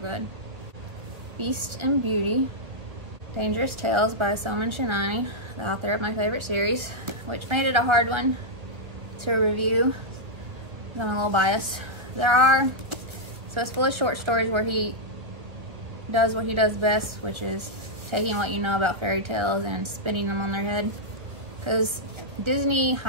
Beast and Beauty, Dangerous Tales by Soman Chainani, the author of my favorite series, which made it a hard one to review. I'm a little biased. So it's full of short stories where he does what he does best, which is taking what you know about fairy tales and spinning them on their head. Because Disney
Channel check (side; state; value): left; late; 1.3 ms